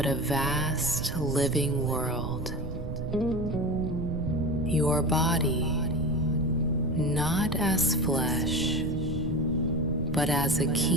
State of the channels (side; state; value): right; noise; rumble, 6 dB below the sound